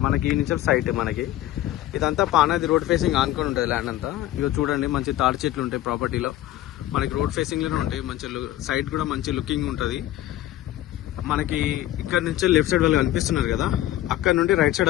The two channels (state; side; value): quieter; right; 14.4 dB